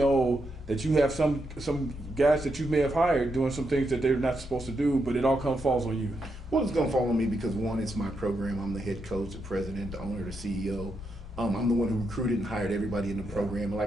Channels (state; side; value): normal; both; correlation 0.82